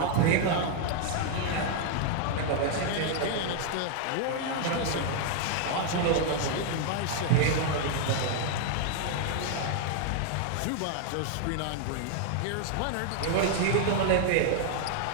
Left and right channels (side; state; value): both; different; correlation 0.00